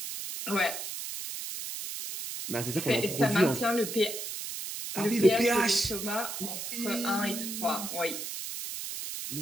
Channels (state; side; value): noise; right; hiss, 6 dB below the sound